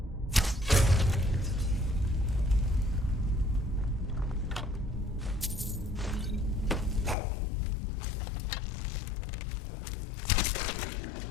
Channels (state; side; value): drops out; right; at 7.2 s